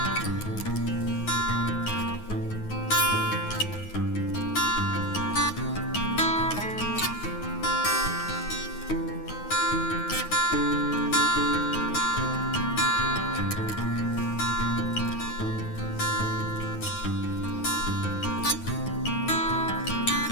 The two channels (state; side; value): late; right; 9.5 ms